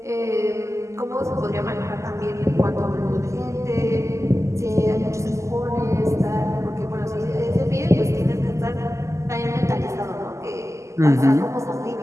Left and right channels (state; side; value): late; left; 0.14 ms